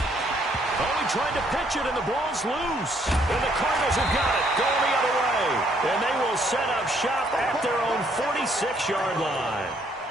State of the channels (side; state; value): both; normal; correlation 0.67